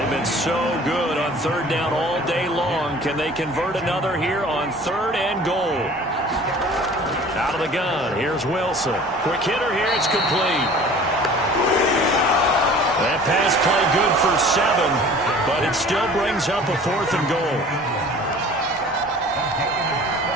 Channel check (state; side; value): normal; both; correlation 0.46